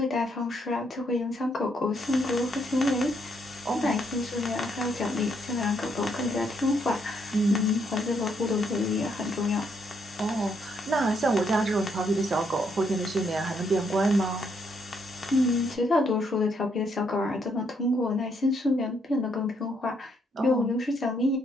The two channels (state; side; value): normal; both; correlation 0.73